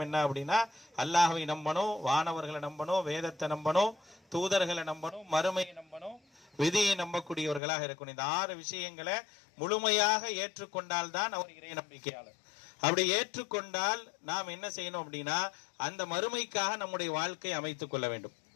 என்ன அப்படின்னா, அல்லாஹ்வை நம்பணும், வானவர்களை நம்பணும், வேதத்தை நம்பணும், தூதர்களை நம்பணும், மறுமையை நம்பணும், விதியை நம்பக்கூடியவர்களாக இருக்கணும். இந்த 6 விஷயங்களை முழுமையாக ஏற்றுக்கொண்டால் தான் அவர் இறை நம்பிக்கையாளர். அப்படி ஏற்றுக்கொண்டால் நாம் என்ன செய்யணும் அப்படின்னா, அந்த மறுமைக்காக நம்முடைய வாழ்க்கை அமைத்துக் கொள்ள வேண்டும்.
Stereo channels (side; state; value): right; drops out; at 7.6 s